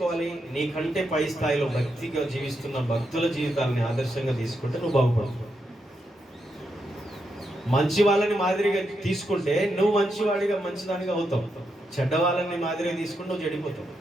నీకంటే పై స్థాయిలో భక్తిగా జీవిస్తున్న భక్తుల జీవితాలని ఆదర్శంగా తీసుకుంటే నువ్వు బాగుపడతావు. మంచి వాళ్ళని మాదిరిగా తీసుకుంటే నువ్వు మంచివాడిగా మంచిదానిగా అవుతావు. చెడ్డ వాళ్ళని మాదిరిగా తీసుకుంటే నువ్వు చెడిపోతావు.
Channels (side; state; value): both; normal; correlation 0.83